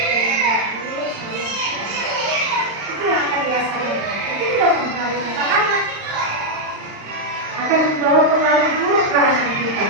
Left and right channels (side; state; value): left; late; 35 ms